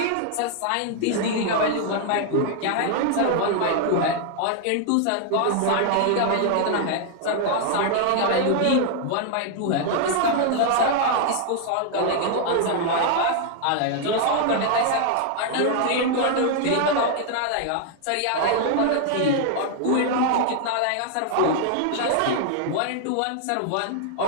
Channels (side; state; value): both; different; correlation 0.00